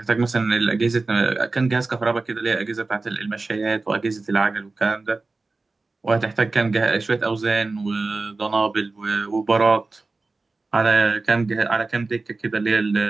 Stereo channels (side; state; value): left; quieter; 3.6 dB